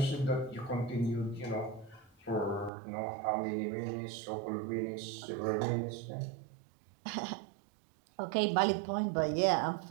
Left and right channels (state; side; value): drops out; left; at 2.7 s